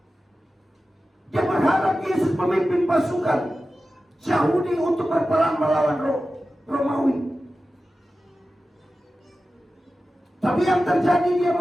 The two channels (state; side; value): normal; both; correlation 0.94